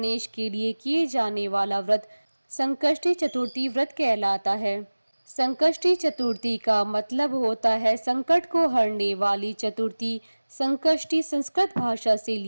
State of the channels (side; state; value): both; inverted; correlation -1.00